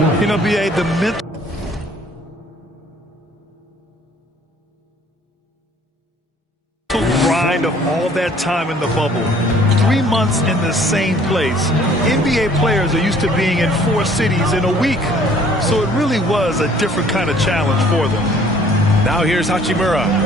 You know, B.A., the mental grind of all that time in the bubble. 3 months in the same place. NBA players are used to being in 4 cities in a week. So it really was a different kind of challenge for them. Now here's Hachimura.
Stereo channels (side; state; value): both; normal; correlation 0.57